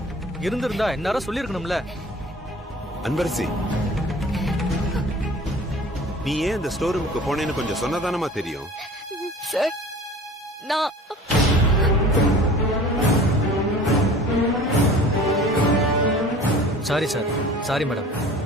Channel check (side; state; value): both; normal; correlation 0.44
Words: இருந்திருந்தா எல்லாரும் சொல்லிருக்கணும்ல. அன்பரசி, நீ ஏன் அந்த ஸ்டோர் ரூமுக்கு போனேன்னு கொஞ்சம் சொன்னதானமா தெரியும். சார், நான் சாரி சார். Sorry madam.